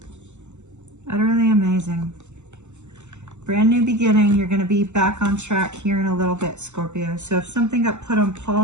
Utterly amazing. Brand new beginning. You're going to be back on track here in a little bit, Scorpio. So if something got put on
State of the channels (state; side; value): late; left; 0.83 ms